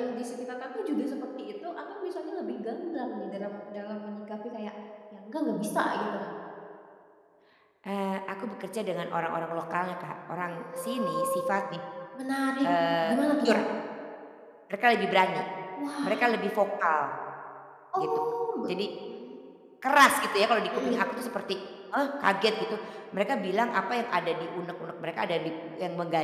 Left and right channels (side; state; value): both; identical; correlation 1.00